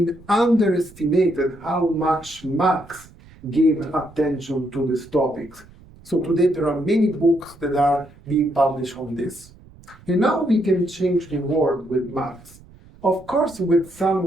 underestimated how much Marx gave attention to these topics. So today there are many books that are being published on this. And now we can change the world with Marx. Of course, with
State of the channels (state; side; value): noise; right; rumble, 23 dB below the sound